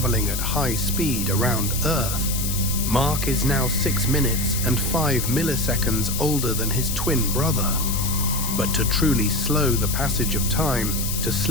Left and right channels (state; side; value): noise; left; hiss, 4 dB below the sound